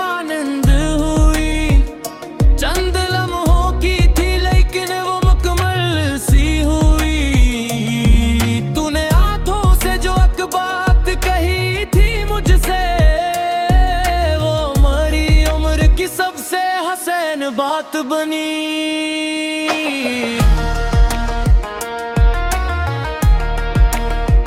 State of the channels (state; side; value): identical; both; correlation 1.00